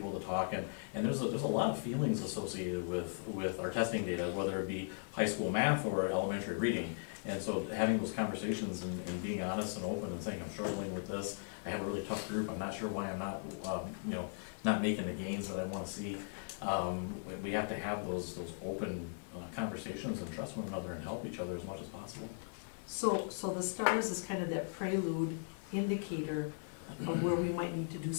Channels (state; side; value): silent; right; digital silence